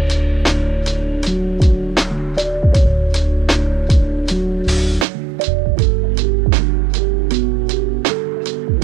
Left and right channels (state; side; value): drops out; left; at 5.1 s